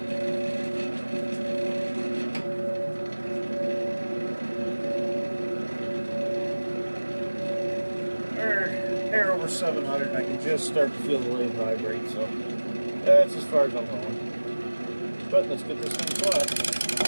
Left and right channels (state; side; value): inverted; both; correlation -1.00